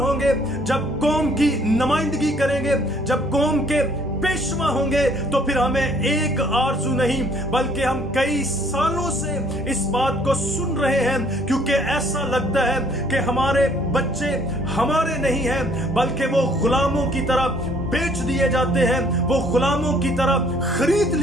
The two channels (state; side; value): normal; both; correlation 0.61